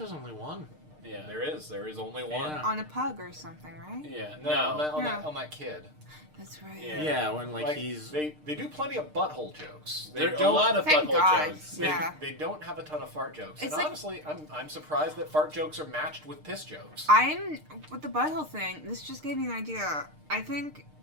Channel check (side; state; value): left; late; 6.6 ms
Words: only one. Yeah, There is only one. Yeah. On a pug or something, right? Yeah, On that kid. That's right. Yeah. Yeah, when, like, Like, he's... they do plenty of butthole jokes. There are a lot of Thank butthole God. jokes. Yeah. They don't have a ton of fart jokes. It's and like- honestly, I'm surprised that fart jokes are matched with piss jokes. I'm with the butthole thing. This just gave me an idea. I think